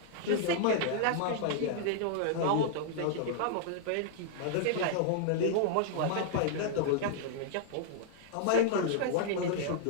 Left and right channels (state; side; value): different; both; correlation -0.01